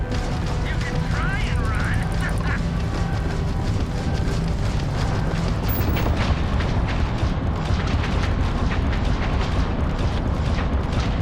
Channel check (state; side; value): identical; both; correlation 1.00